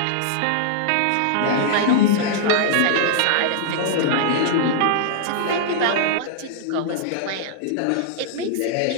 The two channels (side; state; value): both; different; correlation -0.01